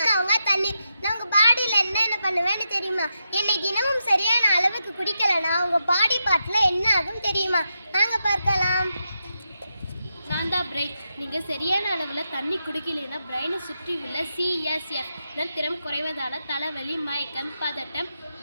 அவங்க தண்ணீர். நான் உங்க பாடியில என்னென்ன பண்ணுவேன்னு தெரியுமா? என்னை தினமும் சரியான அளவுக்கு குடிக்கலனா உங்க பாடி பார்ட்ல என்ன ஆகும் தெரியுமா? வாங்க பார்க்கலாம். நான் தான் பிரெயின். நீங்கள் சரியான அளவில் தண்ணி குடிக்கலைன்னா பிரெயினை சுற்றி உள்ள சிஎஸ்எஃப் திறம் குறைவதால் தலைவலி, மயக்கம், பதட்டம்,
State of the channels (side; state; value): both; inverted; correlation -0.86